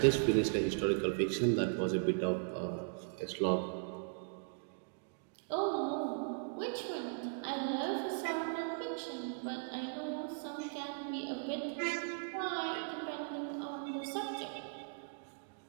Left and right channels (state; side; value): silent; left; digital silence